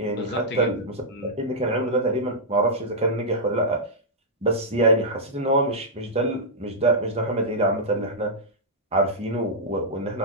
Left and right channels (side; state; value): both; normal; correlation -0.10